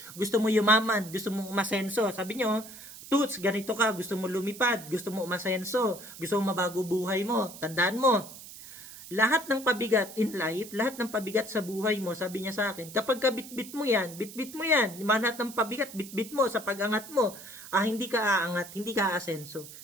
gusto mo yumaman, gusto mo umasenso. Sabi niyo, Toots, ganito ka, gusto mo lumipad, gusto mo umasenso, gusto mo mabago buhay mo. Tandaan mo, lahat ng pabigat in life, lahat ng pabigat sa buhay mo, sabi niya sa akin, kapag ka bitbit mo yan, lahat ng pabigat, bitbit mo sa pag-angat mo, hindi ka aangat, hindi ka aasenso.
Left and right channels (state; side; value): noise; right; hiss, 15 dB below the sound